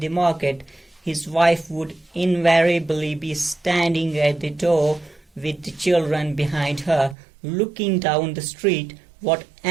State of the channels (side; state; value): left; drops out; at 7.2 s